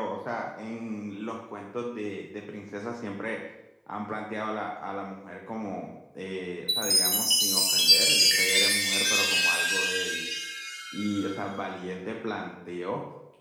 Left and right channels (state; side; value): identical; both; correlation 1.00